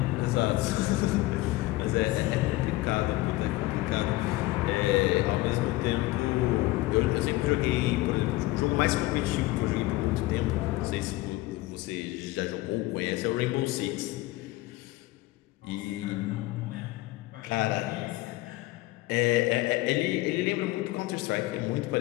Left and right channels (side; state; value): right; quieter; 18.7 dB